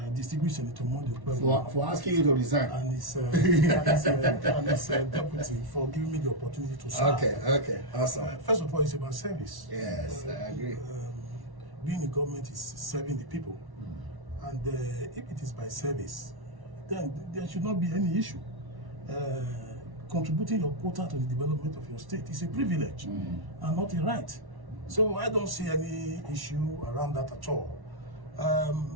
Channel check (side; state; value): left; late; 1.1 ms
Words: distinguished Senator Mondi for asking you to resign, and his deputy for giving me the opportunity to serve. Okay, awesome. First of all, it's about service. Yes, I agree. Being in government is serving the people, and if it is by service, then there should not be any issue. Contributing your quota to the development of your state is a privilege and not a right. So I don't see any issue around that at all.